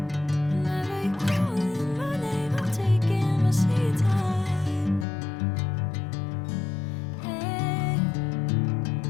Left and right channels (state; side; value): drops out; right; at 5.1 s